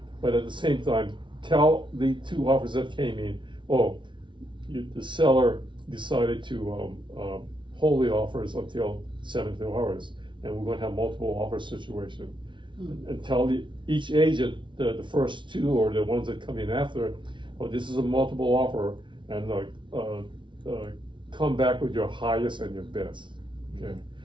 but at the same time, tell the 2 offers that came in, the seller decided to hold the offers until 72 hours, and we're gonna have multiple offer situation. And tell each agent, the first 2 or the ones that come in after, this is a multiple offer, and come back with your highest and your best, okay?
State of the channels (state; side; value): late; left; 0.24 ms